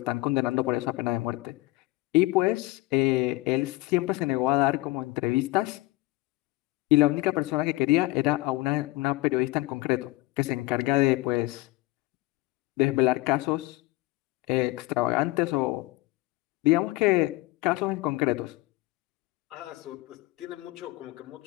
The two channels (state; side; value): quieter; right; 20.9 dB